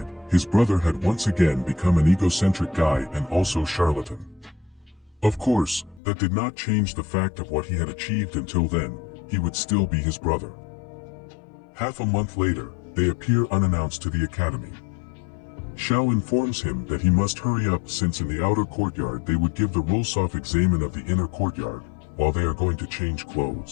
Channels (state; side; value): drops out; right; at 6.0 s